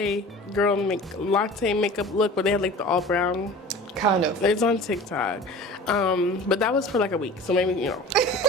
makeup look where they had like the all brown? Kind of. It's on TikTok. But that was for like a week, so maybe, you know.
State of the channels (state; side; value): normal; both; correlation 0.40